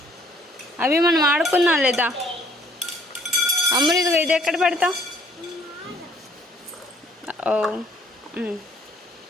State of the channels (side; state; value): both; normal; correlation 0.60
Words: అవి మనం ఆడుకున్నాం లేదా అమ్ములు? ఇది ఎక్కడ పెడతా? Oh